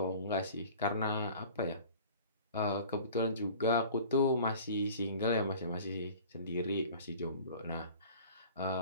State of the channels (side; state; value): both; inverted; correlation -0.44